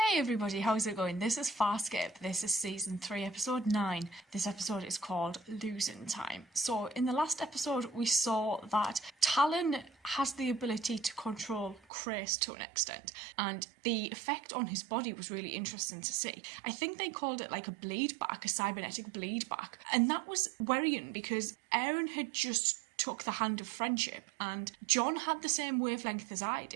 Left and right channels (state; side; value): drops out; left; at 11.9 s